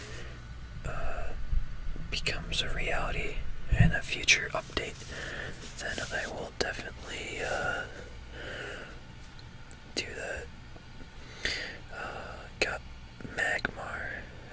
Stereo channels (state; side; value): identical; both; correlation 1.00